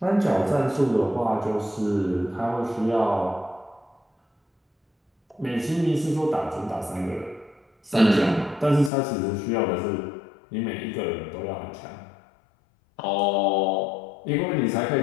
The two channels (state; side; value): drops out; right; at 8.9 s